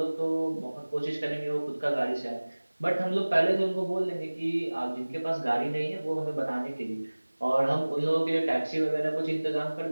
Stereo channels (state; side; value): inverted; both; correlation -1.00